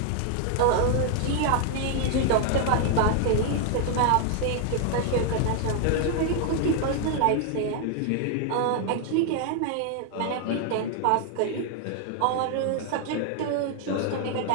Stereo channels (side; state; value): both; different; correlation 0.00